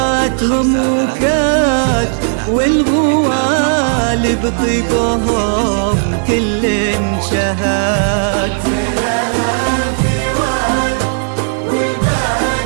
وكاد، والغوال بطيبهم كل شهاد.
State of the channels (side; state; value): left; silent; digital silence